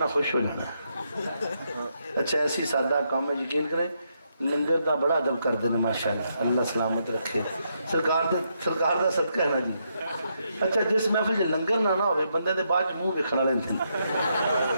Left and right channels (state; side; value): inverted; both; correlation -0.79